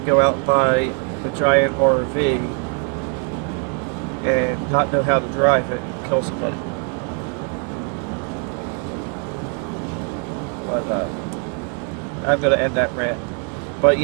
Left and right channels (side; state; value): left; quieter; 39.5 dB